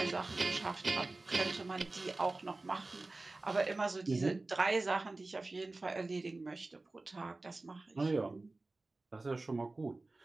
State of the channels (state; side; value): quieter; left; 3.2 dB